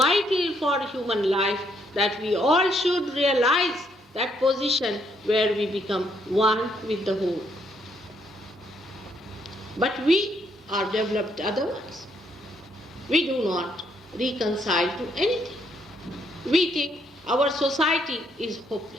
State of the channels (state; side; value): normal; both; correlation 0.72